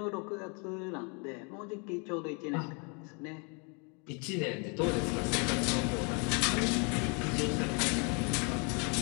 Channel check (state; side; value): quieter; right; 34.5 dB